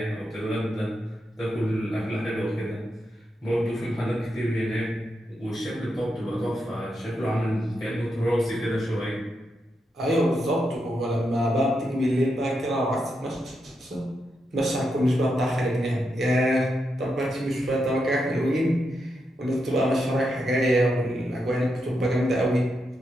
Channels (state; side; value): normal; both; correlation 0.84